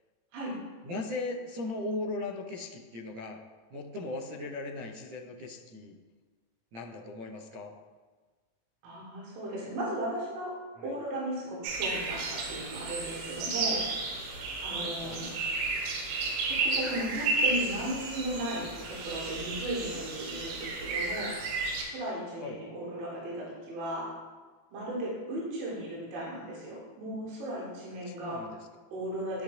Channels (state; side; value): late; left; 18 ms